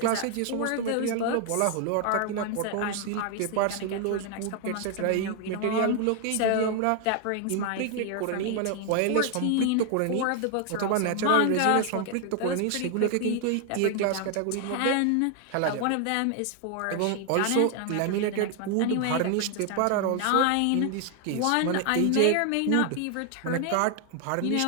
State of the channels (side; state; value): both; different; correlation 0.00